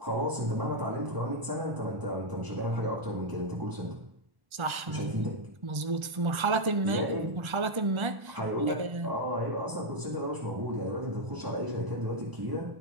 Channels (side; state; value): left; late; 1.3 ms